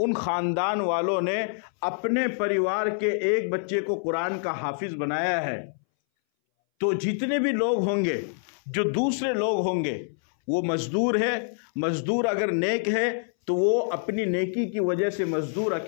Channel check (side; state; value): right; silent; 61 dB below the other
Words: خاندان والوں نے اپنے پریوار کے ایک بچے کو قرآن کا حافظ بنایا ہے۔ تو جتنے بھی لوگ ہوں گے، جو دوسرے لوگ ہوں گے، وہ مزدور ہے، مزدور اگر نیک ہے تو وہ اپنی نیکی کی وجہ سے مزدور